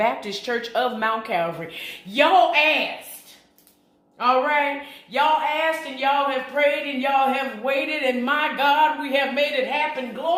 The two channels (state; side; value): identical; both; correlation 1.00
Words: Church of Mount Calvary. Y'all asked. All right. Y'all asked and y'all have prayed and y'all have waited. And my God, we have made it happen.